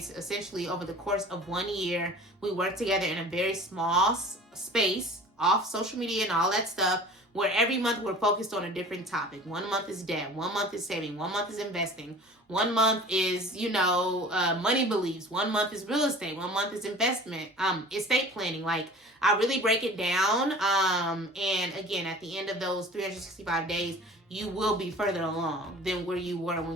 essentially over the course of 1 year, we work together in a very small space, off social media and all that stuff, where every month we're focused on a different topic. 1 month is debt. 1 month is saving. 1 month is investing. 1 month is, money beliefs. 1 month is real estate. 1 month is investment, estate planning. Like, I really break it down. And again, at the end of those 365 days, you will be further along than where you were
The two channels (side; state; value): both; normal; correlation 0.42